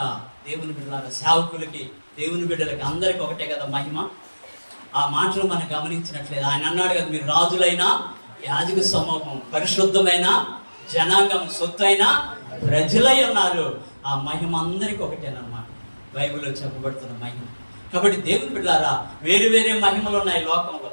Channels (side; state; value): both; inverted; correlation -1.00